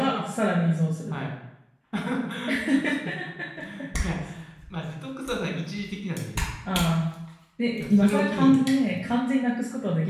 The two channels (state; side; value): identical; both; correlation 1.00